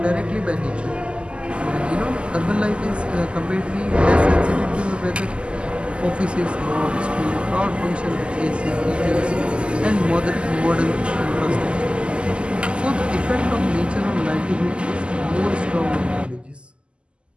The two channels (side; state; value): left; late; 0.052 ms